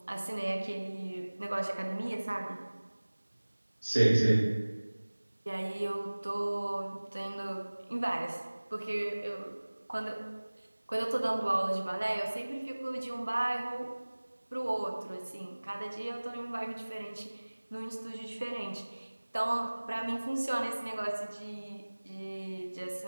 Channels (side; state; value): both; inverted; correlation -1.00